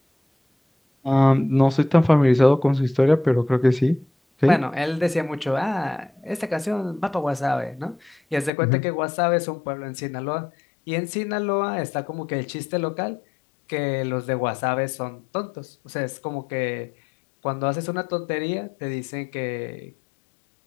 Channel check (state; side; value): drops out; right; at 8.5 s